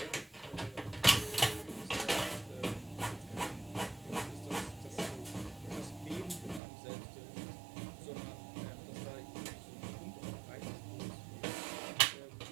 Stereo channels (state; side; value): drops out; left; at 6.6 s